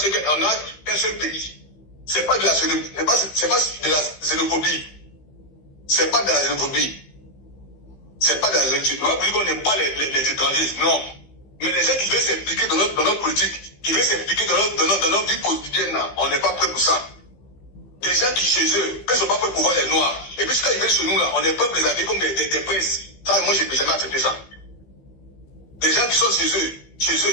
qu'un seul pays. C'est pas de la xénophobie. C'est pas de la xénophobie. C'est pas de la xénophobie. C'est pas de la xénophobie. On va plus qu'on n'aime pas les étrangers. Non. Mais les gens qui veulent s'impliquer dans notre politique, qui veulent s'impliquer dans notre vie quotidienne, là, on n'est pas prêt pour ça. Des gens qui chez eux, quand ils sont pas prêts pour voir les noirs, et puis quand ils viennent chez nous, là, on est prêt pour les appeler comme des princes. Ça, moi, j'ai jamais accepté ça. Des gens qui sont chez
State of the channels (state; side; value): late; right; 15 ms